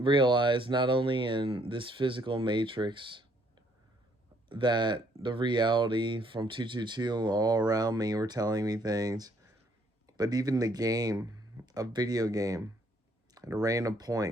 not only in this physical matrix that the reality from 222 all around me were telling me things, but even the game, a video game, at a random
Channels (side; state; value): both; normal; correlation 0.67